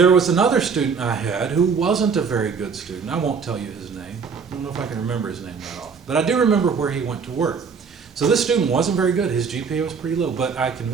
was another student I had who wasn't a very good student. I won't tell you his name. I don't know if I can remember his name that off. But I do remember where he went to work. So this student wasn't very good. His GPA was pretty low. But I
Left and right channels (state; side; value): quieter; left; 5.7 dB